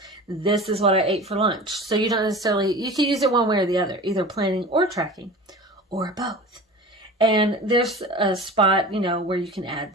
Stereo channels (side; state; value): both; normal; correlation 0.36